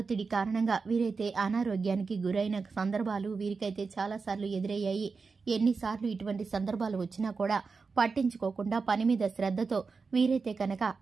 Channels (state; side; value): quieter; left; 4.7 dB